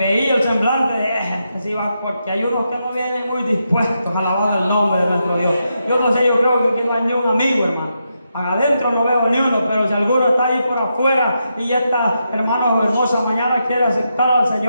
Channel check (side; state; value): both; inverted; correlation -0.84